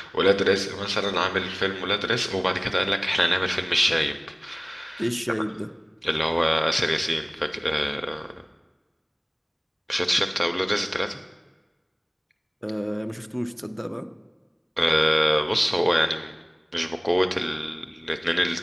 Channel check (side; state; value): both; identical; correlation 1.00